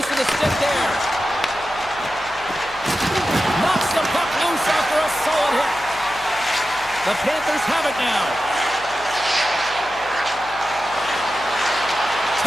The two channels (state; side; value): noise; left; hum, 20 dB below the sound